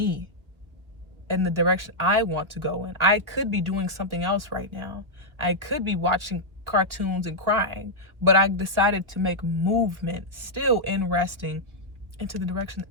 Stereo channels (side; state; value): left; late; 1.1 ms